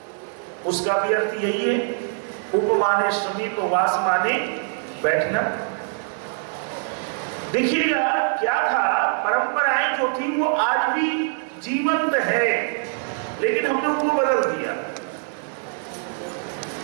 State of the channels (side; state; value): left; silent; 63 dB below the other